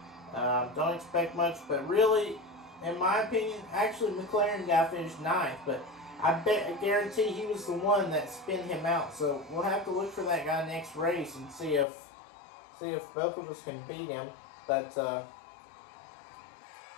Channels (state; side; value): drops out; right; at 11.9 s